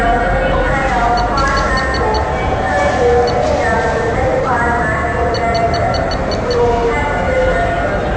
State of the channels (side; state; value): both; identical; correlation 1.00